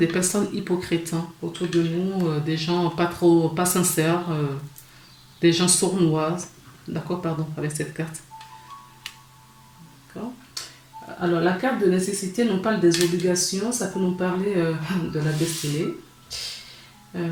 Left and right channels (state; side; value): identical; both; correlation 1.00